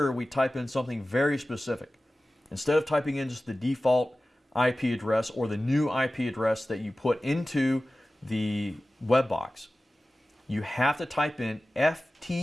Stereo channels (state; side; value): normal; both; correlation 0.96